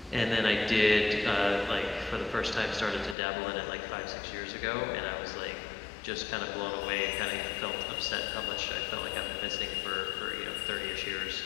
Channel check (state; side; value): drops out; right; at 3.2 s